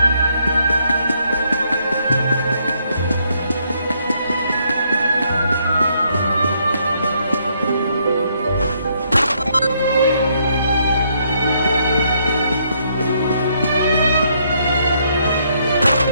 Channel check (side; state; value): both; inverted; correlation -0.72